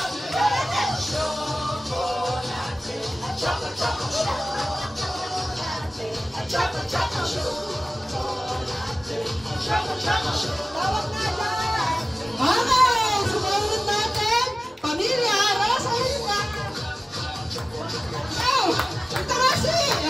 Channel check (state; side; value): normal; both; correlation 0.97